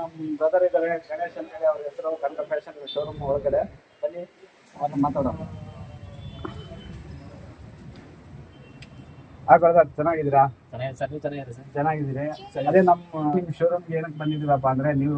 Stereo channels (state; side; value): identical; both; correlation 1.00